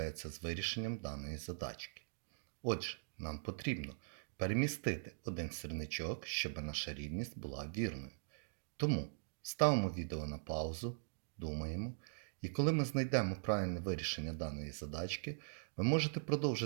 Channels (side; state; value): left; silent; digital silence